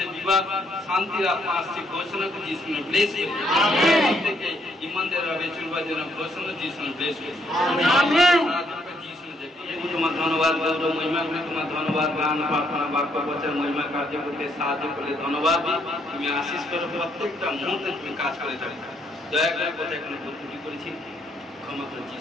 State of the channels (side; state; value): both; normal; correlation 0.71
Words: বিবাদ শান্তির আত্মা আসছে ঘোষণা করে যিশু নামে ব্লেস করি আমেন। থেকে ইমানদার ভাবে চলবার জন্য ঘোষণা যিশু নামে ব্লেস করি আমেন। তোমার ধন্যবাদ গৌরব মহিমা করে তোমার ধন্যবাদ গান প্রার্থনা বাক্য বচন মহিমা কার্য করতে সাহায্য করলে ধন্যবাদ তুমি আশীষ করো প্রত্যেকটা মুহূর্তে তুমি কাজ করে থাকো দয়া করে কথা এখানে ভুল করেছি ক্ষমা করে